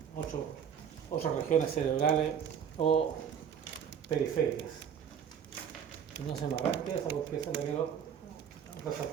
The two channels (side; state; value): left; quieter; 8.1 dB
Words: otras regiones cerebrales o periféricas. Y no se me arranque esa porque esa la quiero